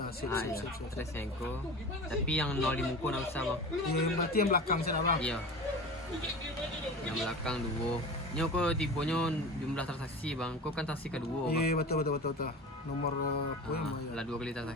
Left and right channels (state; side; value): normal; both; correlation 0.33